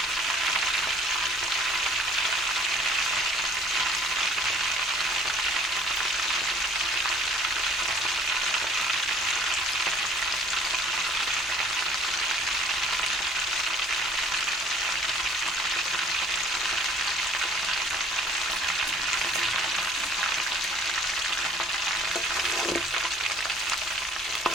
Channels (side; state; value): both; normal; correlation 0.55